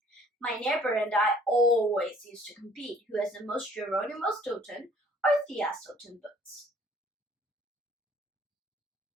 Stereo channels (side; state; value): both; normal; correlation 0.56